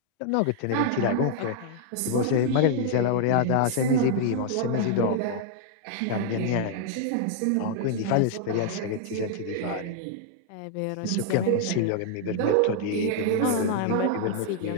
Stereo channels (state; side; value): different; both; correlation -0.01